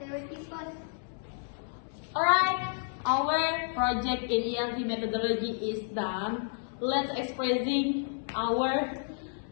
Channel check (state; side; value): silent; right; 57 dB below the other